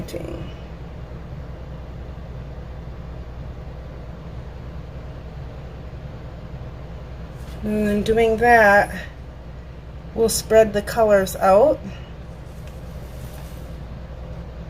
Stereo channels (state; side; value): identical; both; correlation 1.00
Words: And then doing that, we'll spread the colors out.